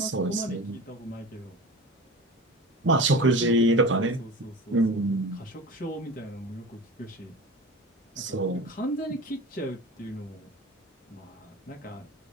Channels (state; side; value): normal; both; correlation 0.33